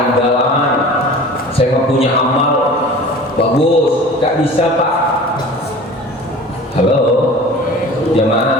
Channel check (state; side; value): normal; both; correlation 0.41